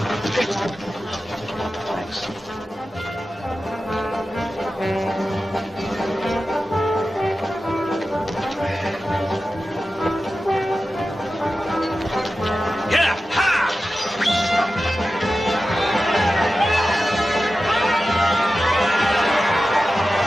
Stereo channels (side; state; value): both; normal; correlation 0.93